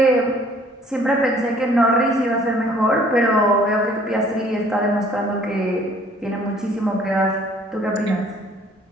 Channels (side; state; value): both; normal; correlation 0.57